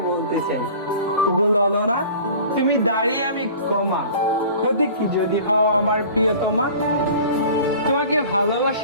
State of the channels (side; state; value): both; inverted; correlation -0.43